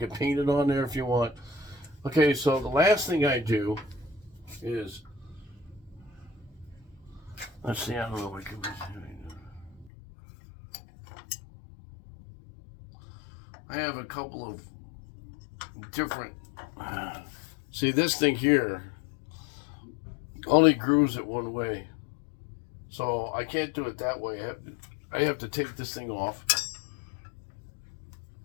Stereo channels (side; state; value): right; drops out; at 9.9 s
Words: paint it on there if you want. Okay, so the last thing I do is, let's see. I don't know what I can do. I have a couple of different. See, this thing here only grooves it one way, so I can't do it that way. I have to take this thing off.